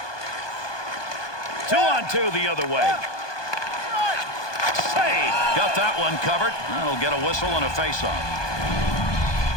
2-on-2 the other way. Save. Got that one covered. That'll get a whistle and a face-off.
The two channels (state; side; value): late; right; 1.2 ms